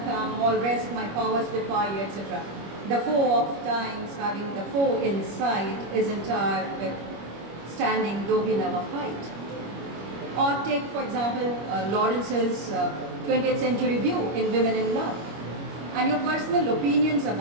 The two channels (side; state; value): left; late; 25 ms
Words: come, all rest, my powers defy you," etc. The foe of times, having the foe in sight, is entire with standing, though we never fight. Or take, for example, Lawrence's 20th century view in Women in Love, and your personal opinions